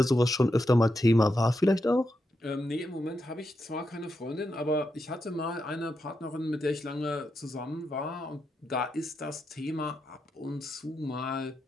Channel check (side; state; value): both; normal; correlation 0.85